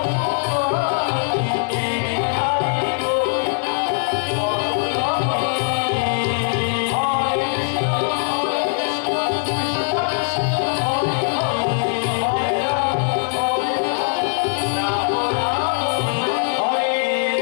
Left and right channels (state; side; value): silent; right; digital silence